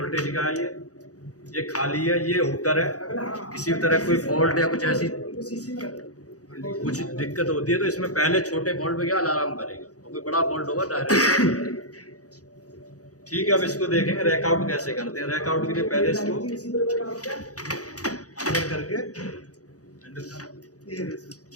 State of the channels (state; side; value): late; right; 0.67 ms